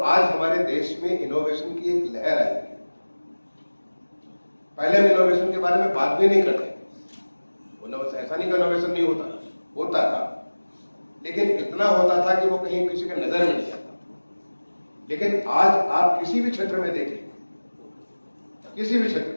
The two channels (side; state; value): both; inverted; correlation -1.00